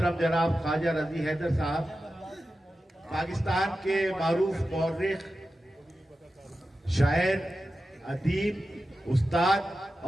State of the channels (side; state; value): both; normal; correlation 0.92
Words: جناب خواجہ رضی حیدر صاحب پاکستان کے معروف مورخ، شاعر، ادیب، استاد